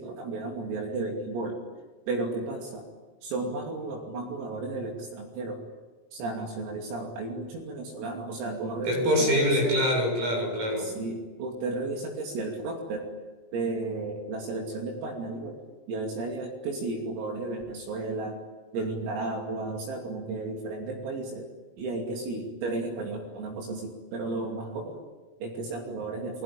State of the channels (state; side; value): late; left; 17 ms